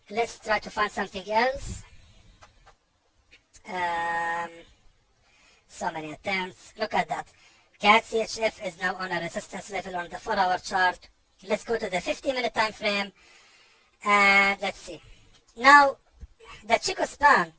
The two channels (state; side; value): identical; both; correlation 1.00